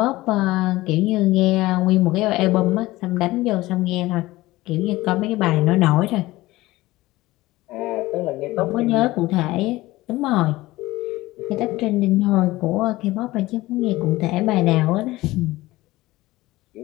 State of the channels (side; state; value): right; quieter; 18.5 dB